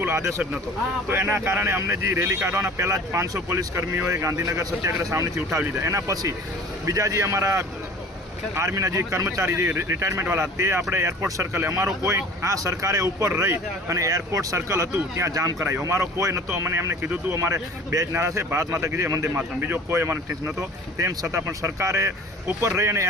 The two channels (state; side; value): normal; both; correlation 0.45